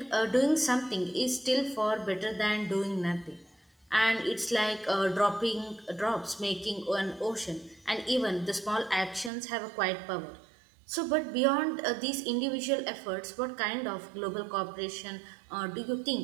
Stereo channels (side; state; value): left; drops out; at 9.3 s